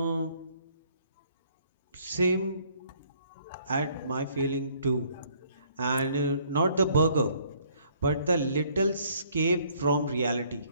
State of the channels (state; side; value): inverted; both; correlation -0.63